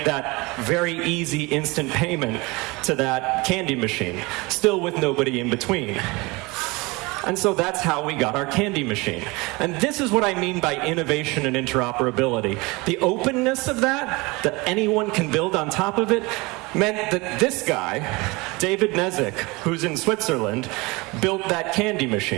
that very easy instant payment to that candy machine, still with nobody in between. And so that's how we got our candy machine. And this is what I mean by innovation and interoperability. The openness of that anyone can build on top of it, meant that this guy, David Nezik, who's in Switzerland, built that candy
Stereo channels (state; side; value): quieter; left; 24.6 dB